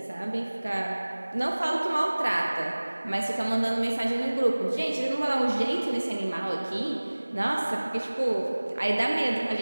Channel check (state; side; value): inverted; both; correlation -1.00